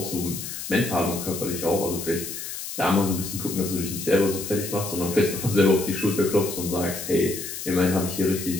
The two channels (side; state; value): left; noise; hiss, 7 dB below the sound